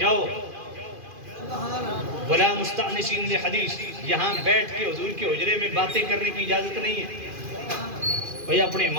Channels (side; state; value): left; late; 2.4 ms